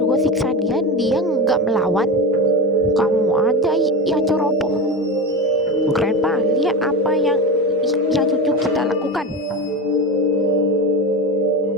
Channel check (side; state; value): both; normal; correlation 0.21